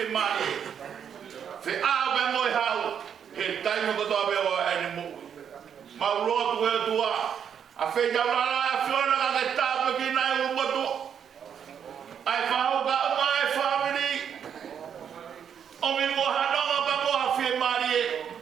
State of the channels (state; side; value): quieter; left; 8.1 dB